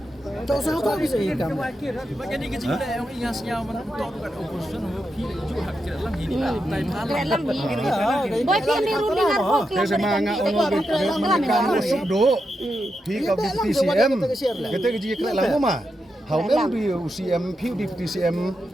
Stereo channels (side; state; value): both; normal; correlation 0.86